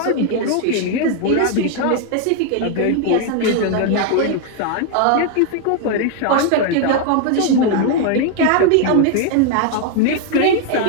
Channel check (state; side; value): different; both; correlation 0.00